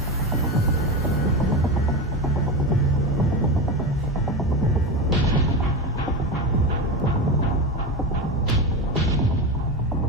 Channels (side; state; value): both; normal; correlation 0.20